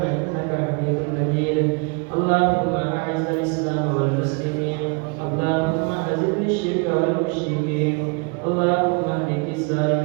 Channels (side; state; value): left; quieter; 33.1 dB